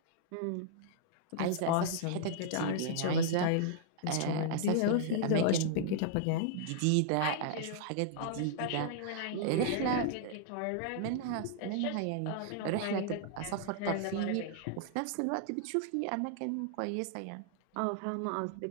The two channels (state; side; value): different; both; correlation -0.01